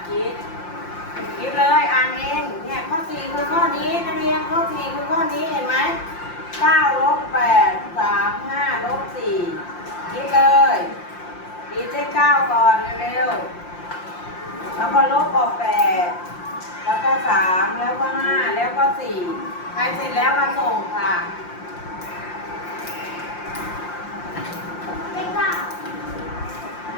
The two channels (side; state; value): right; late; 5.7 ms